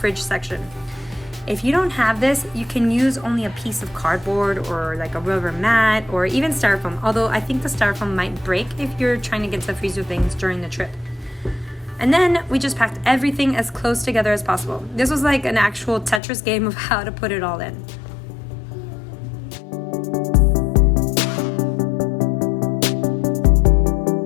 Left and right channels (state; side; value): drops out; right; at 16.2 s